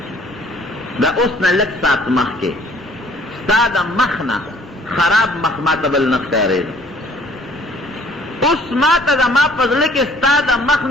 دا اوس نه لږ ساعت مخکې ستا د مخ نه خراب مخ ما ته بل نه ښکارېده اوس ما ته زما په زړه کې ستا د مخ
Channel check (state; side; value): normal; both; correlation 0.57